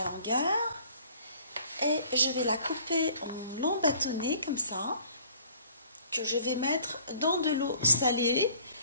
longueur. Et je vais la couper en longs bâtonnets comme ça, que je vais mettre dans de l'eau salée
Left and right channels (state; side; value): inverted; both; correlation -0.54